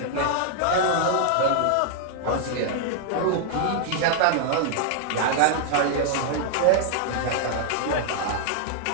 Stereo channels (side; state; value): both; different; correlation 0.00